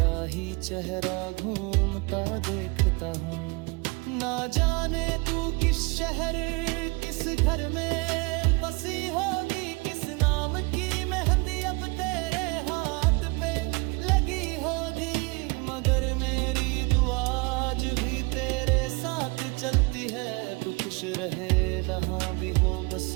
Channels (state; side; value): quieter; left; 28.1 dB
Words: ही चेहरा घूमता देखता हूँ। ना जाने तू किस शहर किस घर में बसी होगी, किस नाम की मेहंदी अब तेरे हाथ पे लगी होगी। मगर मेरी दुआ आज भी तेरे साथ चलती है, तू खुश रहे जहाँ भी हो, बस